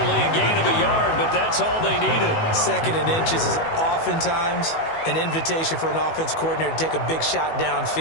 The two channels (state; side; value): late; right; 18 ms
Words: a gain of a yard, but that's all they needed. 2nd and inches is oftentimes an invitation for an offense coordinator to take a big shot